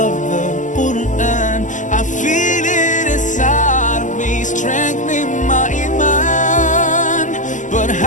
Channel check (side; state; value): right; late; 0.37 ms